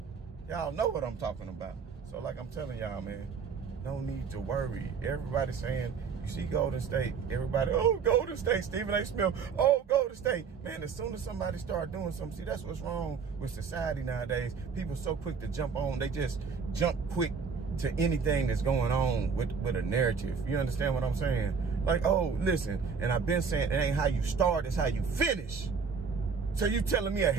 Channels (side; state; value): left; quieter; 5.7 dB